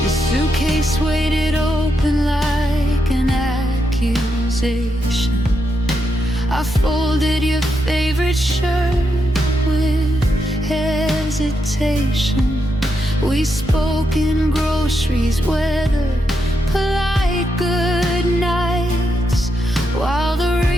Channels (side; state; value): both; normal; correlation 0.82